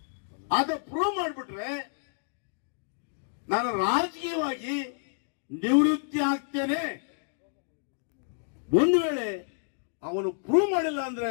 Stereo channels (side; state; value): right; silent; digital silence